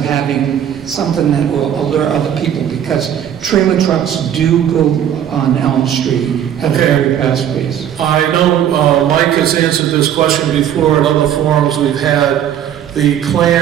something that will alert other people, because trailer trucks do go on Elm Street at a very fast pace. I know Mike has answered this question before at other forums we've had. The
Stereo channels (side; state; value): left; quieter; 9.9 dB